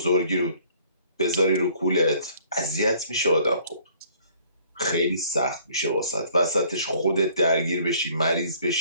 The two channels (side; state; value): both; inverted; correlation -0.59